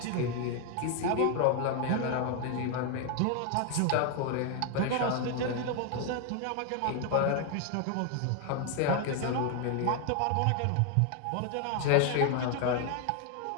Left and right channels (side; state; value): both; different; correlation 0.01